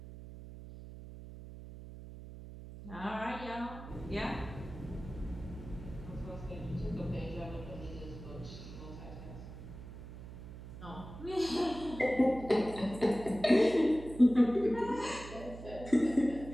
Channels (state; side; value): noise; right; hum, 13 dB below the sound